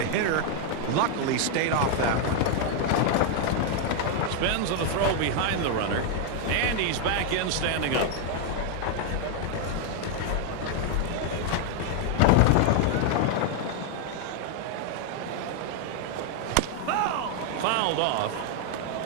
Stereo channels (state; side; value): different; both; correlation 0.00